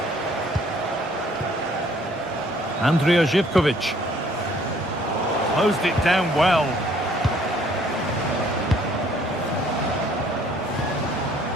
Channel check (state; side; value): normal; both; correlation 0.61